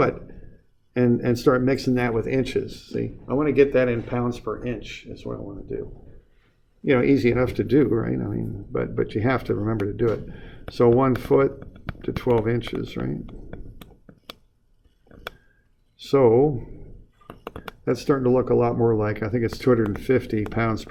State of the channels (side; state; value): both; identical; correlation 1.00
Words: and start mixing that with inches. See, I want to get that in pounds per inch is what I want to do. You know, easy enough to do, right? I mean, but you have to remember to do it. So 1 foot to 12 inches, right? So that's starting to look a lot more like, I think it's 250 pounds